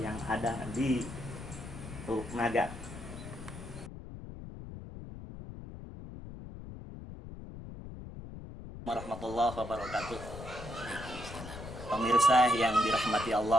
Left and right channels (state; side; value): noise; left; rumble, 11 dB below the sound